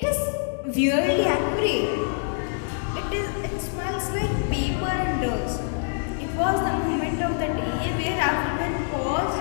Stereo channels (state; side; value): silent; right; digital silence